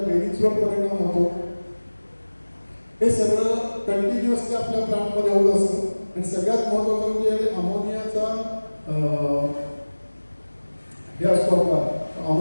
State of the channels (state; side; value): inverted; both; correlation -1.00